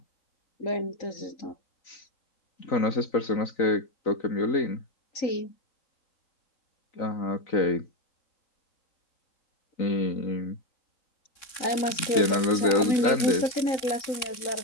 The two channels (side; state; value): right; late; 3.6 ms